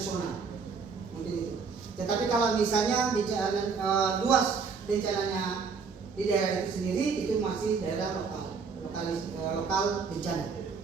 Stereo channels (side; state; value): left; quieter; 5.3 dB